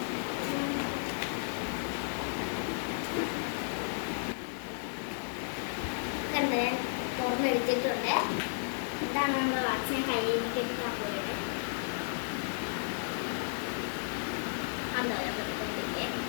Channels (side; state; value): right; silent; digital silence